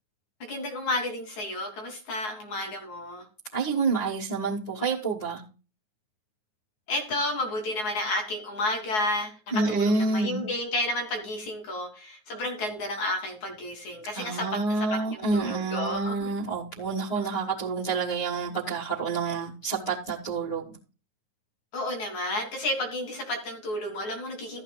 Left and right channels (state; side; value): late; right; 9.4 ms